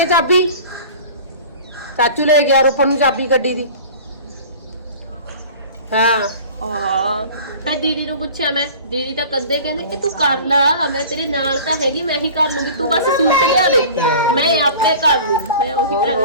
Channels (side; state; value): both; inverted; correlation -0.41